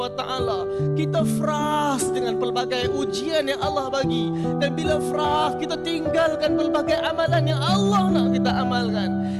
wa taala. Kita frust dengan pelbagai ujian yang Allah bagi, dan bila frust, kita tinggalkan pelbagai amalan yang Allah nak kita amalkan.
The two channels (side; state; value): both; identical; correlation 1.00